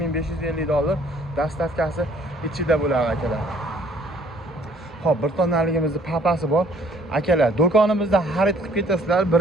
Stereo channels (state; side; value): normal; both; correlation 0.59